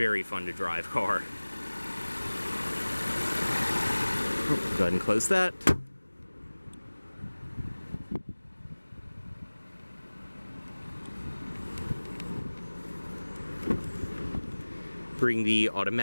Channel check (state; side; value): inverted; both; correlation -1.00